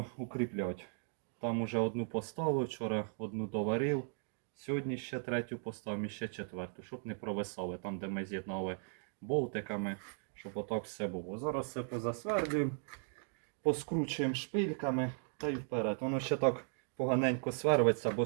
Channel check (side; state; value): left; silent; 53 dB below the other